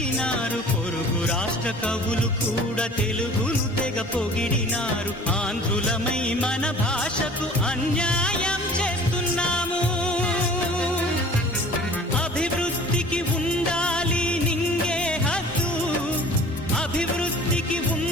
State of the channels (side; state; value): both; normal; correlation 0.46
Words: పొరుగు రాష్ట్ర కవులు కూడా తెలుగును తెగ పొగిడినారు. ఆంధ్రులమై మన భాషకు అన్యాయం చేస్తున్నాము. అభివృద్ధికి ఉండాలి నింగే హద్దు, అభివృద్ధికి